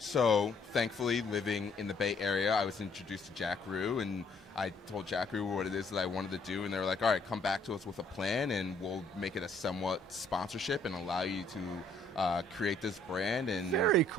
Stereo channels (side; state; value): both; normal; correlation 0.65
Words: thankfully, living in the Bay Area, I was introduced to Jack Rue, and I told Jack Rue what it is that I wanted to do, and they were like, all right, come back to us with a plan, and we'll make it a somewhat sponsorship and allow you to create this brand. And very